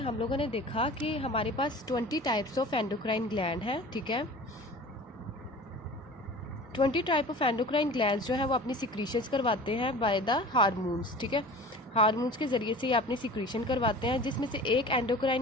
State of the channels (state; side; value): normal; both; correlation 0.39